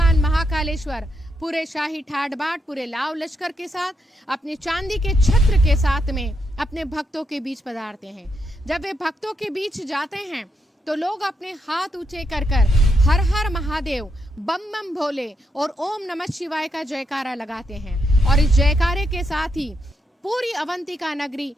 महाकालेश्वर पूरे शाही ठाट बाट, पूरे लाव लश्कर के साथ, अपने चांदी के छत्र के साथ में अपने भक्तों के बीच पधारते हैं। जब वे भक्तों के बीच जाते हैं तो लोग अपने हाथ ऊंचे कर कर हर हर महादेव, बम बम भोले और ओम नमः शिवाय का जयकारा लगाते हैं। और इस जयकारे के साथ ही पूरी अवंतिका नगरी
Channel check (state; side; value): normal; both; correlation 0.81